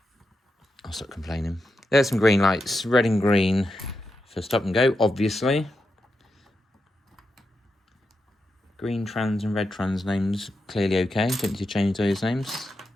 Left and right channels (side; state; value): both; normal; correlation 0.86